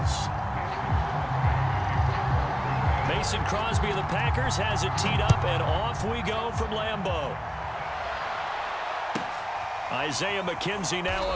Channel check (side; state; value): both; identical; correlation 1.00